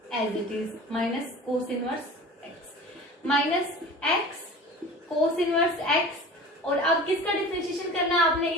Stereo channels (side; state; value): both; normal; correlation 0.40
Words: as it is minus cos inverse x minus x cos inverse x, और अब किसका डिफरेंशिएशन करना है आपने,